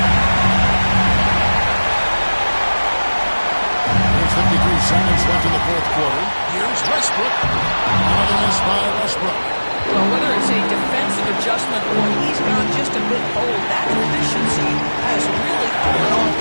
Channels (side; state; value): both; inverted; correlation -1.00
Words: seconds left in the fourth quarter. Here's Westbrook. Another miss by Westbrook. Well, whether it's a defensive adjustment or he's gone just a bit old, that efficiency has really fallen off